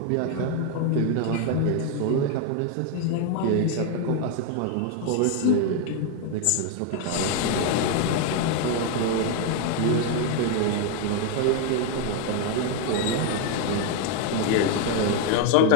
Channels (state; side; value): different; both; correlation 0.01